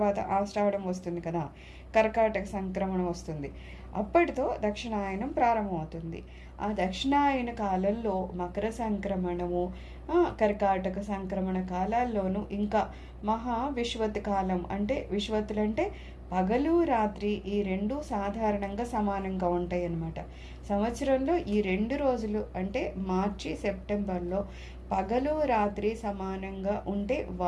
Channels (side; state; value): both; identical; correlation 1.00